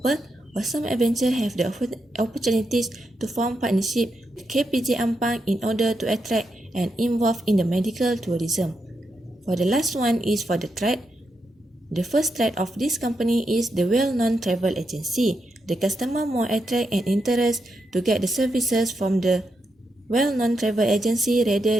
Awesome Adventure have the opportunities to form partnership with KPJ Ampang in order to attract and involve in the medical tourism. For the last one is for the threat. The first threat of this company is the well-known travel agency. The customer more attract and interest to get the services from the well-known travel agency rather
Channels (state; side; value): normal; both; correlation 0.83